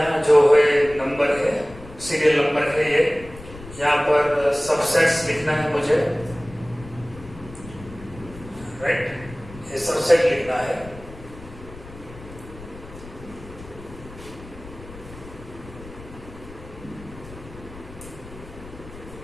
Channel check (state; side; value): noise; left; rumble, 17 dB below the sound